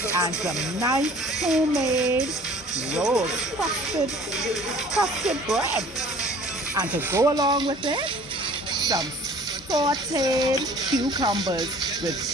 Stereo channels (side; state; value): both; normal; correlation 0.50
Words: And some nice homemade roast crusted bread. And to go along with it, some sauteed cucumbers with